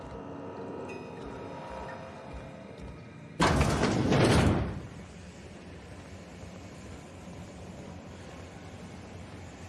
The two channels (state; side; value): identical; both; correlation 1.00